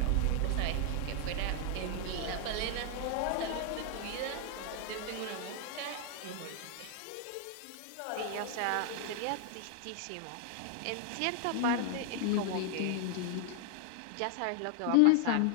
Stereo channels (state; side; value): different; both; correlation 0.00